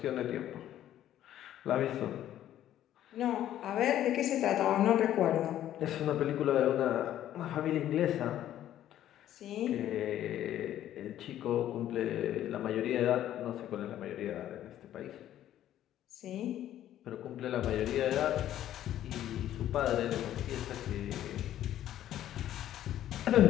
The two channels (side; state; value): right; quieter; 12.0 dB